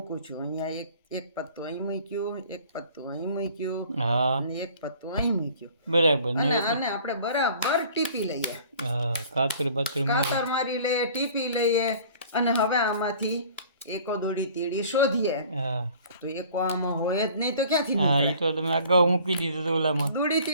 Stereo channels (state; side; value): inverted; both; correlation -0.50